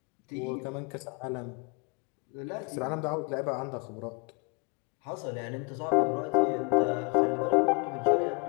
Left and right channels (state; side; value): quieter; right; 30.6 dB